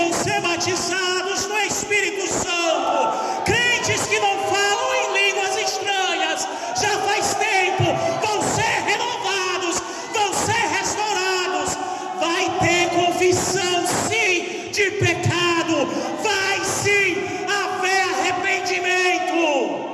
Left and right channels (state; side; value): identical; both; correlation 1.00